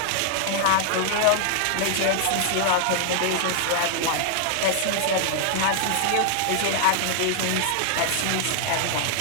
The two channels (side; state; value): both; different; correlation -0.01